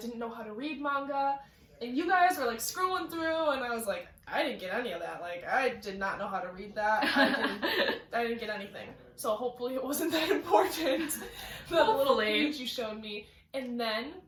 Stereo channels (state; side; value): identical; both; correlation 1.00